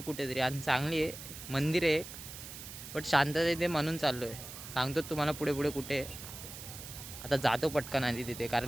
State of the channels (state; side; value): noise; right; hiss, 12 dB below the sound